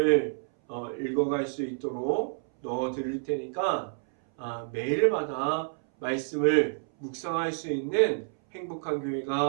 읽어갈 수 있도록 넣어 드릴 테니까 매일마다 말씀을 묵상할 수 있는 행복한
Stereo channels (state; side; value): silent; left; 59 dB below the other